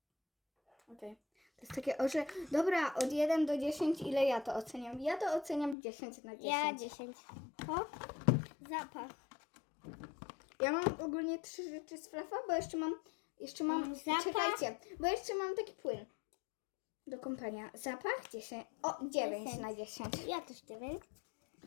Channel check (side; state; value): right; drops out; at 5.8 s